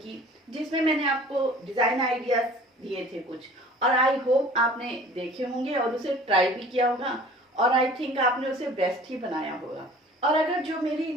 जिसमें मैंने आपको डिजाइन आइडियाज दिए थे कुछ, और आई होप आपने देखे होंगे और उसे ट्राई भी किया होगा, और आई थिंक आपने उसे बेस्ट ही बनाया होगा। और अगर जो मेरी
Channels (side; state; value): both; normal; correlation 0.47